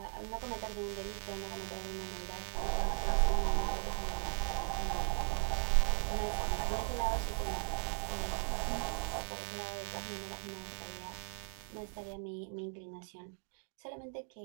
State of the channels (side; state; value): left; silent; 53 dB below the other